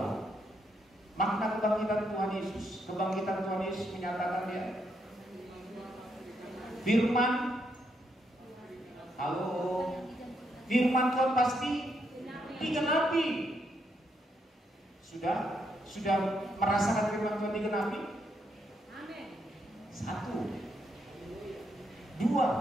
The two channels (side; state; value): both; normal; correlation 0.77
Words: makna kebangkitan Tuhan Yesus. Kebangkitan Tuhan Yesus menyatakan dia firman. Halo. Firman Tuhan pasti digenapi. Sudah merasakan firman Tuhan digenapi? Amin. 1, 2.